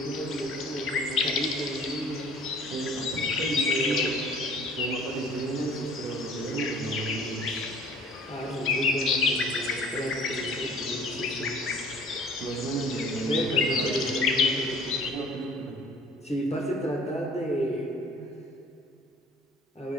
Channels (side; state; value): both; normal; correlation 0.50